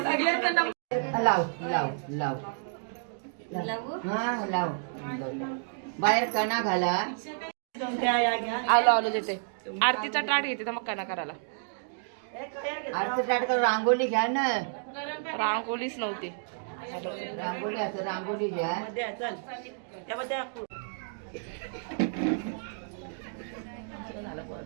नंबर लाव लाव लाव हा लाव. बाहेर कणा घाला. आलो देते. आरतीचा टाट घेते तर मग कना करायला. आरती स्टार्ट कर. रांगोळी घ्या ना. रांगोळीच नव्हती. रांगोळी असं रांगोळी घ्या.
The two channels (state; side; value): silent; left; digital silence